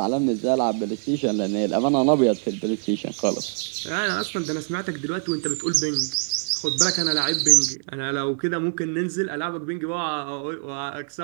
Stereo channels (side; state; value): left; silent; 62 dB below the other